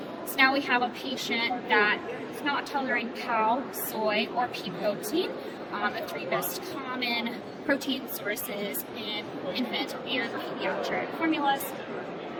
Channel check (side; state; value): both; identical; correlation 1.00